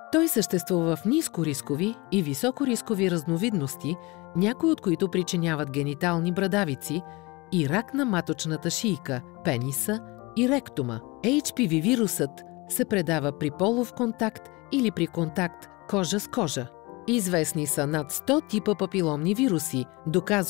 Той съществува в нискорискови и високорискови разновидности, някои от които причиняват генитални брадавици и рак на маточната шийка, пениса и ректума. HPV вирусът се предава при полов контакт или при контакт кожа с кожа. Известни са над 100 типа папиломни вируси,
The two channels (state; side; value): quieter; right; 24.5 dB